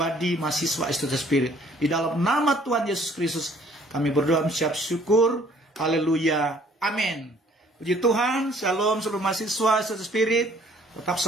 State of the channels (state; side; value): normal; both; correlation 0.59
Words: mahasiswa STT Spirit. Di dalam nama Tuhan Yesus Kristus kami berdoa mengucap syukur. Haleluya. Amin. Puji Tuhan. Shalom seluruh mahasiswa STT Spirit. Tetap